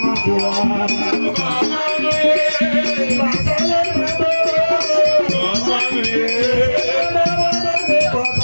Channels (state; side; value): inverted; both; correlation -1.00